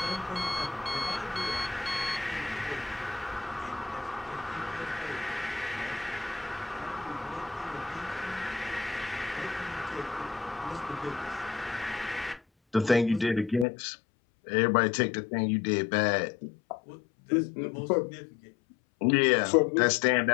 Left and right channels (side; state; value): right; drops out; at 13.7 s